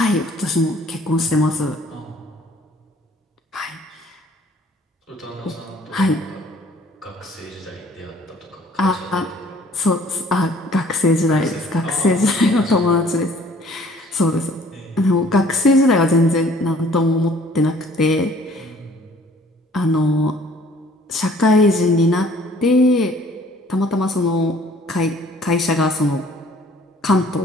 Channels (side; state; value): both; normal; correlation 0.55